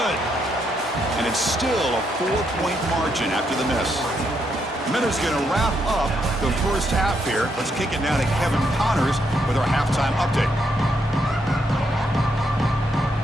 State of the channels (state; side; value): normal; both; correlation 0.77